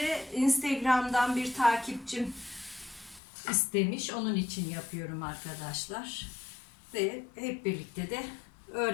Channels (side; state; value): right; drops out; at 3.2 s